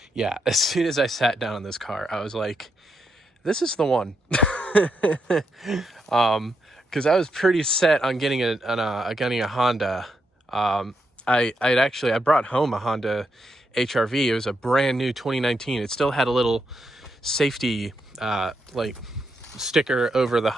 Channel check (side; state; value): both; normal; correlation 0.82